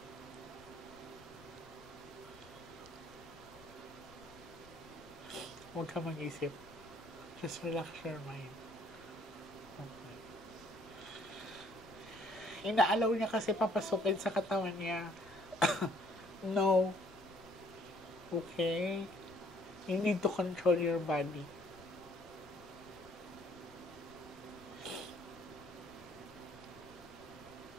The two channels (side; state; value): left; noise; rumble, 22 dB below the sound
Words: Huwag ka mag-isip. Just relax your mind. Okay. Inaalaw niya kasi papasukin sa katawan niya. No. Okay? You need to control your body.